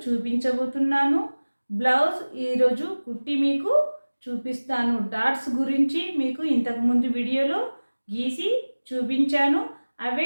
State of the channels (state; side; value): inverted; both; correlation -1.00